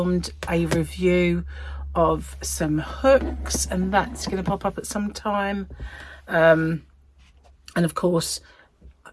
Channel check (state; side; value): identical; both; correlation 1.00